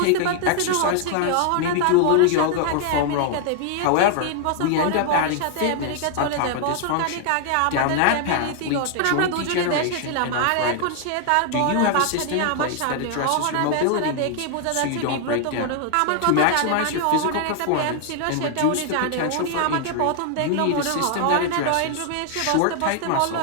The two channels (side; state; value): both; different; correlation 0.00